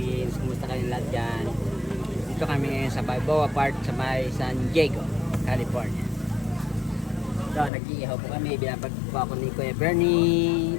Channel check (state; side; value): drops out; right; at 7.7 s